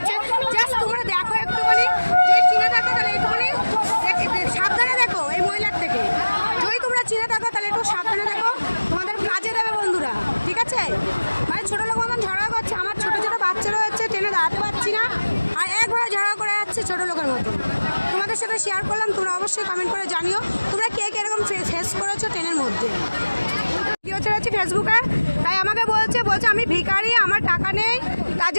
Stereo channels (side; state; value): both; inverted; correlation -1.00